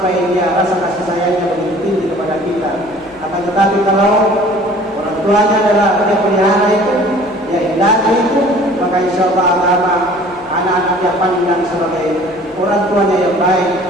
dia rasa kasih sayangnya begitu tinggi kepada kita. Akan tetapi kalau orang tuanya adalah dia pelihara itu, dia indahnya itu, maka insya Allah agama anak-anak dia pandang sebagai orang tuanya yang baik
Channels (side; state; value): left; noise; hum, 25 dB below the sound